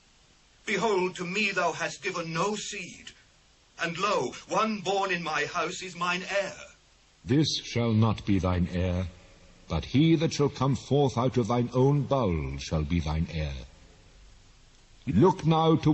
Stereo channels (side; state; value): both; identical; correlation 1.00